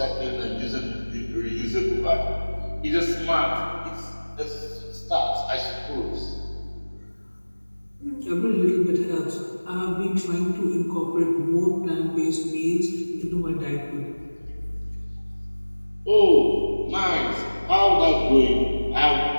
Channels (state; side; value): inverted; both; correlation -1.00